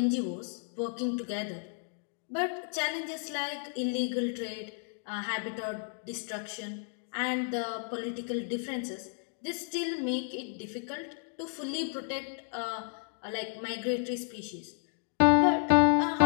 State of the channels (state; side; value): silent; right; 56 dB below the other